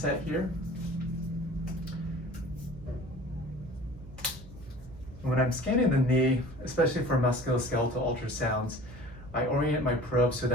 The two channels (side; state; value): right; noise; hum, 17 dB below the sound